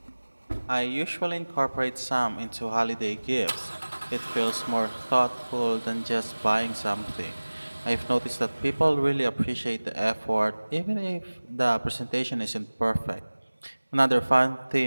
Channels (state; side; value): inverted; both; correlation -1.00